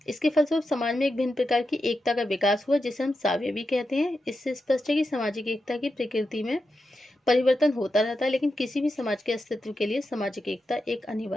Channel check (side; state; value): both; normal; correlation 0.88